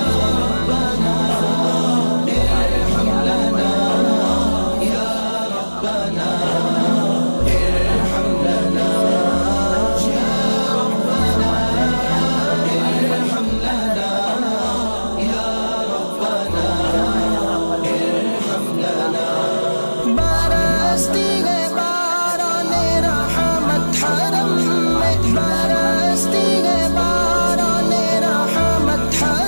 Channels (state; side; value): inverted; both; correlation -1.00